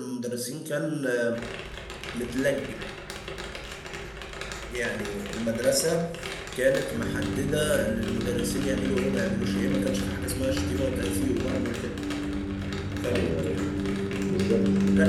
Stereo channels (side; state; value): both; identical; correlation 1.00